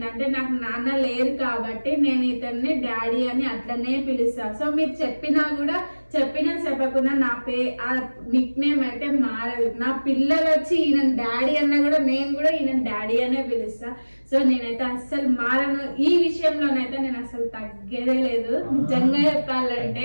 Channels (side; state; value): both; inverted; correlation -1.00